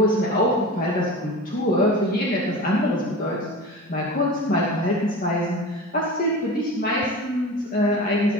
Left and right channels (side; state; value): both; normal; correlation 0.32